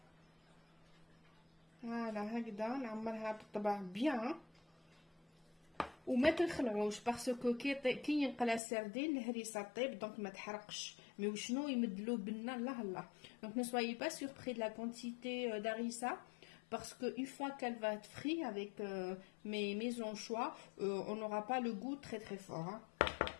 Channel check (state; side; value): drops out; right; at 8.6 s